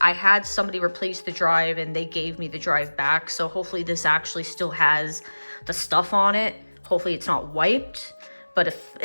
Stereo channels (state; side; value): inverted; both; correlation -1.00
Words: I had somebody replace the drive and they gave me the drive back, so hopefully this actually still has the stuff on it. Hopefully it's not wiped, but